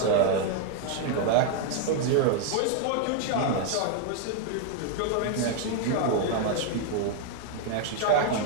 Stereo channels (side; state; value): both; different; correlation 0.00